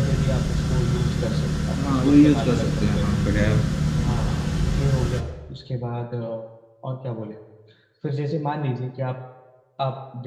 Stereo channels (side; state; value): both; identical; correlation 1.00